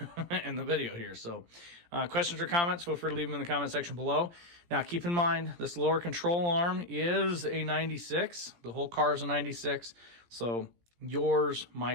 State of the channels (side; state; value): left; late; 17 ms